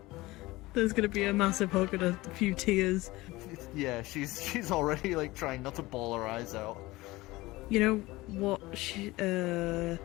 There's gonna be a massive hug and a few tears. Yeah, she's already like trying not to bawl her eyes out. You know what?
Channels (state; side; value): quieter; right; 19.9 dB